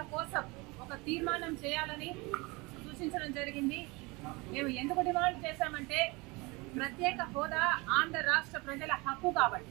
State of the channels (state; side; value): quieter; left; 25.6 dB